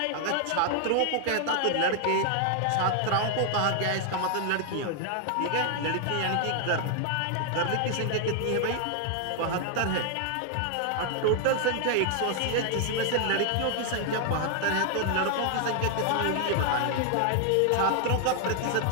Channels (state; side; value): different; both; correlation 0.00